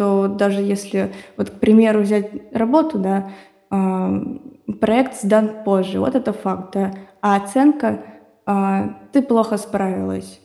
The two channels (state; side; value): identical; both; correlation 1.00